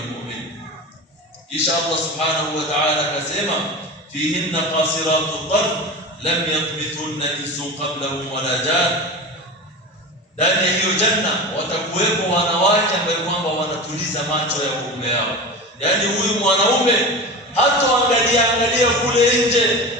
almu'min. Kisha Allah subhanahu wa ta'ala akasema fihinna qasiratu tarf lam yatmithunna insun qablahum wala jan. Ndani ya hiyo janna watakuwepo wanawake ambao kwamba wanatuliza macho ya waume wao. Yaani huyu mwanaume hatoangalia kule nje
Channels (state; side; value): normal; both; correlation 0.28